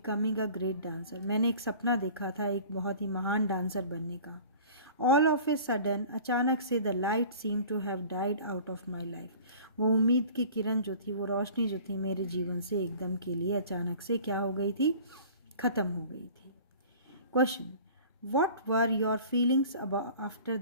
a great dancer, मैंने एक सपना देखा था एक बहुत ही महान डांसर बनने का. ऑल ऑफ ए सडन, अचानक से, the light seem to have died out of my life, वो उम्मीद की किरण जो थी, वो रोशनी जो थी मेरे जीवन से एकदम के लिए अचानक से क्या हो गई थी? ख़त्म हो गई थी. Question, what were your feelings after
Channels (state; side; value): inverted; both; correlation -0.44